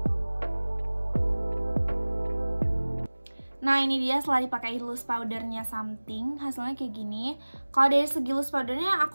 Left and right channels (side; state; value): both; inverted; correlation -1.00